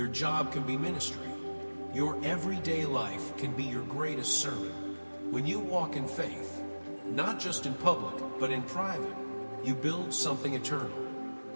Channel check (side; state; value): both; inverted; correlation -1.00